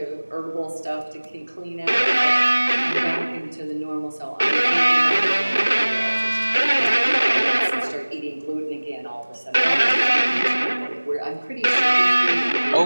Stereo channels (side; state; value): both; inverted; correlation -1.00